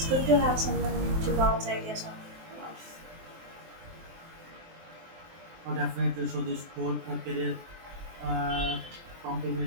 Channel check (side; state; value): left; late; 23 ms